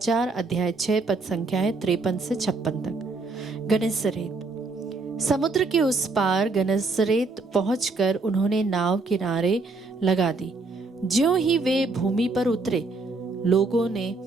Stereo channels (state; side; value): quieter; left; 3.6 dB